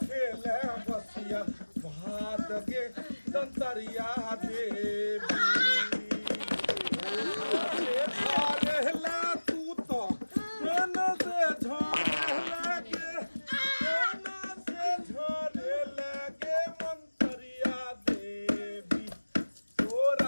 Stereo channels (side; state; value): both; inverted; correlation -1.00